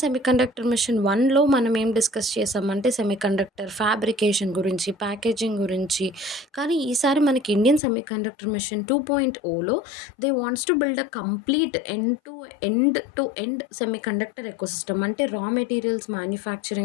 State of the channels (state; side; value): drops out; right; at 7.8 s